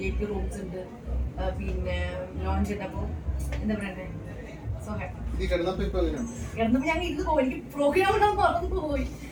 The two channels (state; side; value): identical; both; correlation 1.00